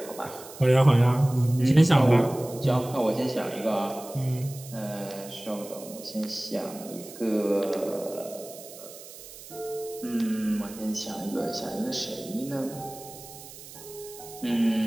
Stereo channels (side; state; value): right; noise; hiss, 16 dB below the sound